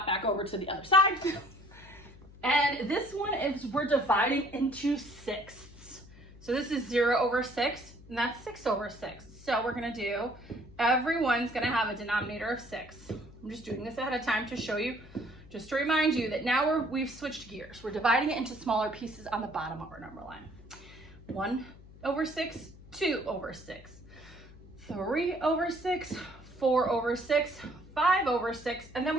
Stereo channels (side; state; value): left; noise; hum, 20 dB below the sound